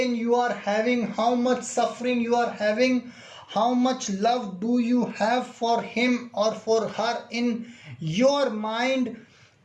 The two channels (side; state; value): both; identical; correlation 1.00